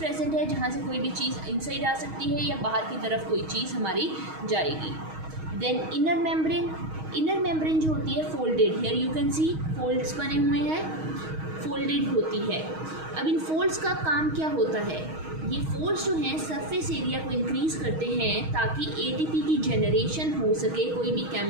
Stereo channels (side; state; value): left; late; 6.3 ms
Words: है जहाँ से कोई भी चीज़ इनसाइड आ सकती है या बाहर की तरफ कोई चीज़ हमारी जाएगी. Then inner membrane. Inner membrane जो होती है folded. Here you can see folds बने हुए हैं, फोल्डेड होती है. अब इन फोल्ड्स का काम क्या होता है? ये फोल्ड्स जो हैं सरफेस एरिया को इंक्रीज़ करते हैं ताकि एटीपी की जनरेशन हो सके कोई भी